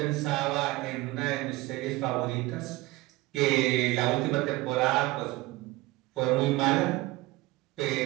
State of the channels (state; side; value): quieter; left; 19.7 dB